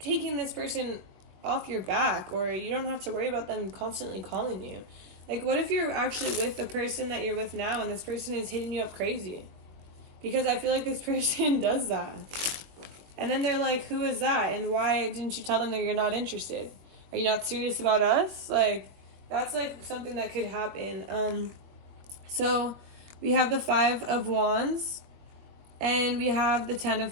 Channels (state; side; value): late; left; 21 ms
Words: this person off your back, or you don't have to worry about them constantly calling you. Like, what if you're actually with the person that you're with now and this person is hitting you up crazy? Because I feel like this person does that. And then they're like, who is that? And why didn't you tell them that you're not interested? Are you not serious about us? Like, that's like something that could happen. So we have the 5 of Wands and we have the 10